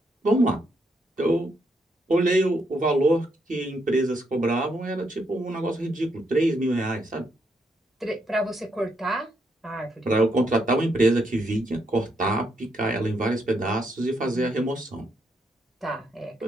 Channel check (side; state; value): both; normal; correlation 0.77